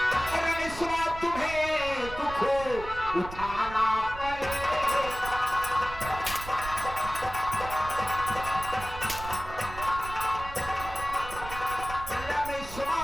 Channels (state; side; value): noise; right; rumble, 12 dB below the sound